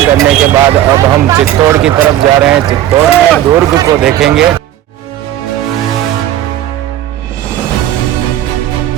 करने के बाद अब हम चित्तौड़ की तरफ जा रहे हैं। चित्तौड़ में दुर्ग को देखेंगे।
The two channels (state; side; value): quieter; left; 12.5 dB